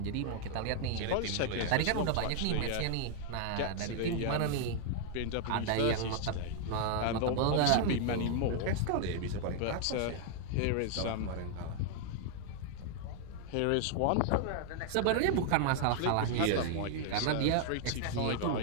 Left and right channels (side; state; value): both; different; correlation 0.00